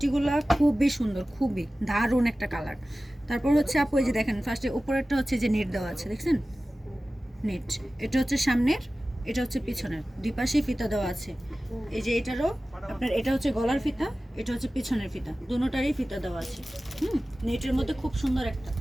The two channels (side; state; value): both; normal; correlation 0.96